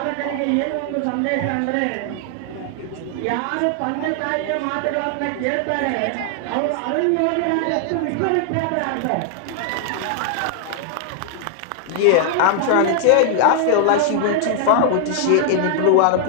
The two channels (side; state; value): both; different; correlation 0.00